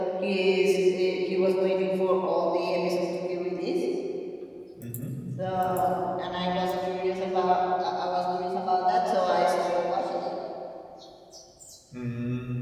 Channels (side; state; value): both; identical; correlation 1.00